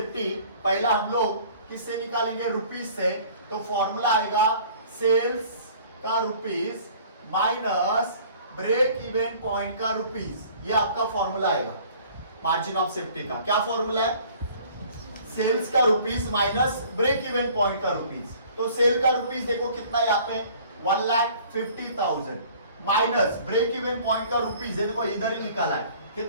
पहला हम लोग किससे निकालेंगे, रुपीस से। तो फॉर्मूला आएगा सेल्स का rupees minus break even point का रुपीस, ये आपका फॉर्मूला आएगा मार्जिन ऑफ सेफ्टी का। क्या फॉर्मूला है, सेल्स का rupees minus break even point का रुपीस। तो सेल का रुपीस देखो कितना है यहाँ पे 1,50,000 माइनस ब्रेक इवन पॉइंट का रुपीस है, देखो इधर ही निकाला है,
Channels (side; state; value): both; inverted; correlation -0.52